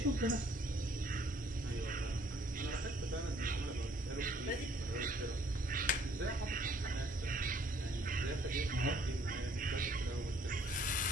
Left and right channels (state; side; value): normal; both; correlation 0.61